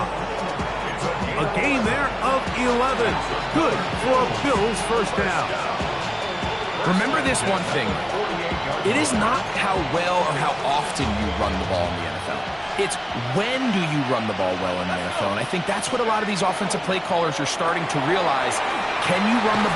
A gain there of 11. Good for a Bills first down. Remember this one thing. It is not how well or how often you run the ball in the NFL. It's when do you run the ball well in the NFL. And I think that's what a lot of these offensive play callers are starting to realize. Can you run the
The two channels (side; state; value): both; identical; correlation 1.00